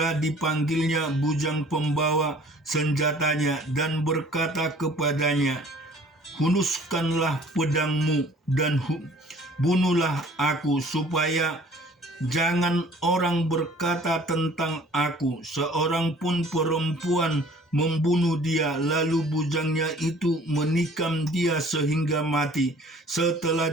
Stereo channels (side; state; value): both; normal; correlation 0.52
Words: dipanggilnya bujang pembawa senjatanya dan berkata kepadanya, "Hunuskanlah pedangmu dan bunuhlah aku, supaya jangan orang berkata tentang aku, seorang pun perempuan membunuh dia." Lalu bujangnya itu menikam dia sehingga mati. Setelah